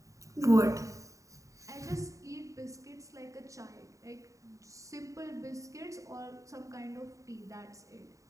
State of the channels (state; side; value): late; left; 0.16 ms